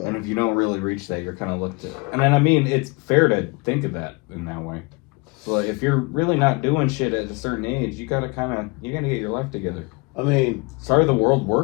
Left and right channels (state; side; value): quieter; right; 27.6 dB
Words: And if you don't really reach that, you're kind of looked at. And then, I mean, it's fair to think of that in that way. So if you're really not doing shit at a certain age, you gotta get your life together. I mean, sorry the world